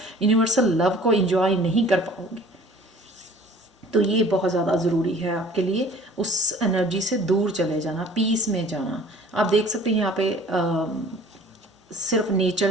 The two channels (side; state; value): both; normal; correlation 0.49